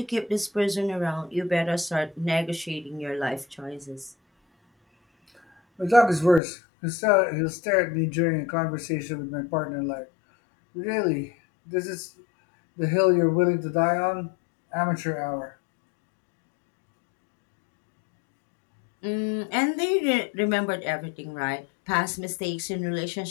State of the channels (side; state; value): right; drops out; at 6.4 s